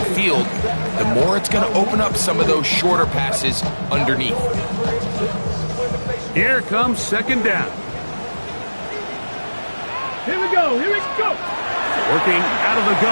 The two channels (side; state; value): both; inverted; correlation -1.00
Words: the more it's going to open up some of those shorter passes underneath. Here comes second down. Here we go. Working out of the